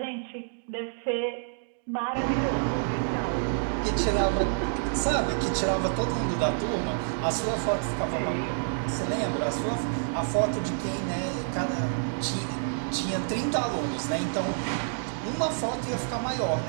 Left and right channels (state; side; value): silent; left; digital silence